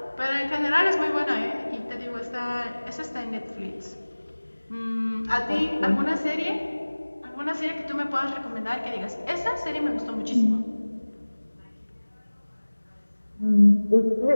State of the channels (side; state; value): both; inverted; correlation -1.00